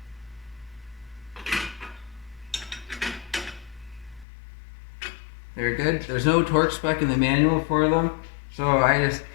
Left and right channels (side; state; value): right; drops out; at 4.2 s